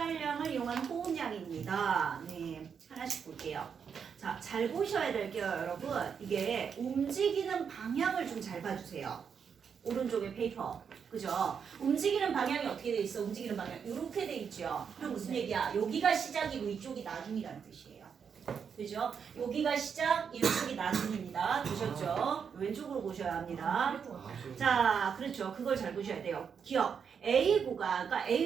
이용한 호흡량입니다. 네, 하나씩 볼게요. 자, 잘 보셔야 될게요, 여러분. 이게 움직이는 방향을 좀 잘 봐주세요. 오른쪽에 페이퍼. 그죠? 움직이는 방향이 어떻게 돼 있어? 움직이는 방향. 이렇게 돼 있죠? 그럼 무슨 얘기야? 여기가 시작이고 이쪽이 나중이라는 뜻이에요. 그죠? 여기가 시작, 이쪽이 나중입니다. 보셨죠? 왼쪽으로 보셔야 합니다. 자, 그렇죠. 그걸 잘 보셔야 돼요. 기억. A 구간, 그러니까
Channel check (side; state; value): left; quieter; 6.8 dB